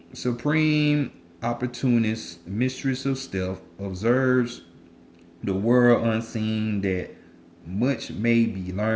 supreme opportunist, mistress of stealth, observes the world unseen that much may be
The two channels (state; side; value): identical; both; correlation 1.00